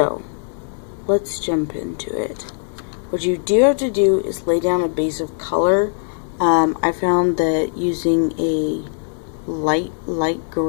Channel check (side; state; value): right; silent; digital silence